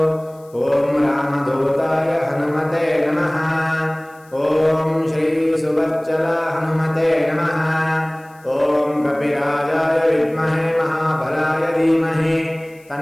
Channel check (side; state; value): left; noise; hiss, 30 dB below the sound